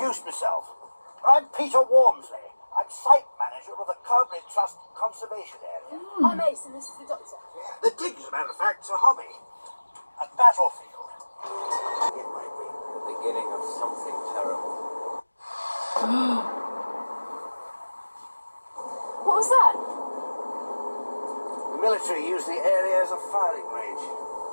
myself. I'm Peter Wormsley. I'm site manager of the Cowbridge Trust Conservation Area. I'm Ace and this is the Doctor. The dig, as a matter of fact, is a hobby. A battlefield. It might be. The beginning of something terrible. What was that? The military use the area as a firing range.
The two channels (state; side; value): inverted; both; correlation -1.00